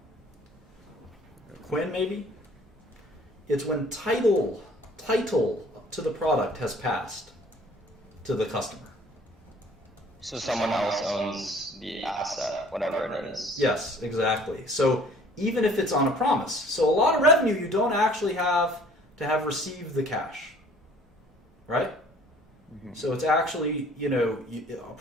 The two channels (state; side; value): normal; both; correlation 0.53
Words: Quinn, maybe? It's when title to the product has passed to the customer. So someone else owns the asset, whatever it is. Yes, exactly. So even if it's on a promise. So a lot of revenue you don't actually have to have received the cash. Right? Mm-hmm. So it's actually, a